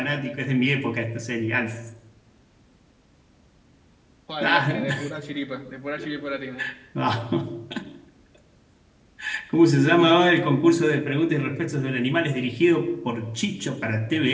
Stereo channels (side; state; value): both; identical; correlation 1.00